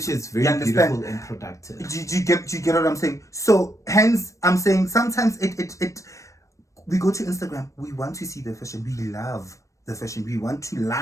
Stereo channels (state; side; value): late; right; 0.15 ms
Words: Which is very beautiful and productive. Do you get what I'm saying? So hence, I'm saying sometimes we go to Instagram, we want to see the fashion. We love the fashion. We want to